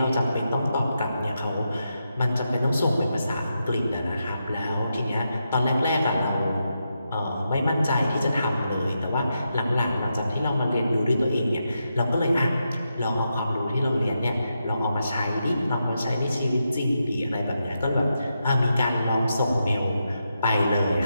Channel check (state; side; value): inverted; both; correlation -0.85